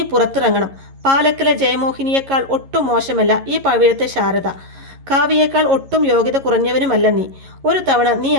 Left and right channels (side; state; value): left; late; 11 ms